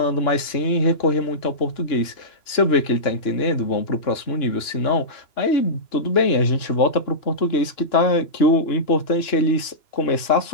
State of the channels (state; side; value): late; right; 2.9 ms